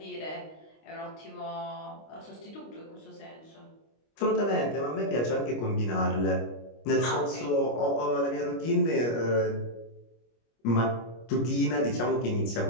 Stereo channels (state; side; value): late; right; 25 ms